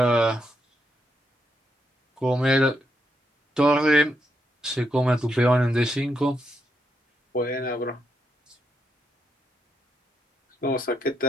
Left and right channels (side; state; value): both; normal; correlation 0.80